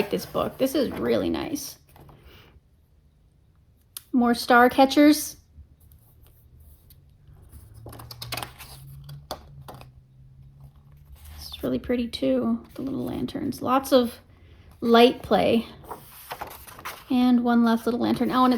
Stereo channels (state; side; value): identical; both; correlation 1.00